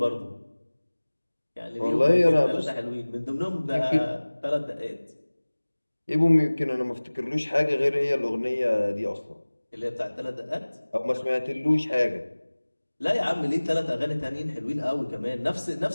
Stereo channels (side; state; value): both; inverted; correlation -1.00